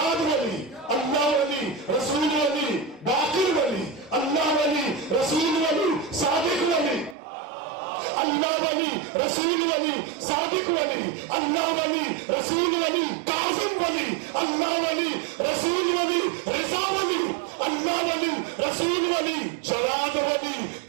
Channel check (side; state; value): left; drops out; at 7.2 s